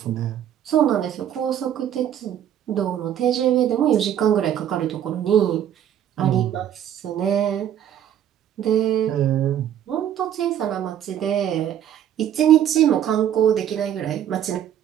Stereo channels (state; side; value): quieter; left; 10.3 dB